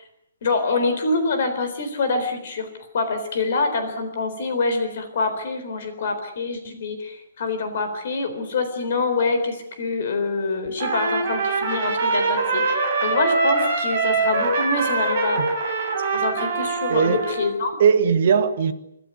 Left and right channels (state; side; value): inverted; both; correlation -0.61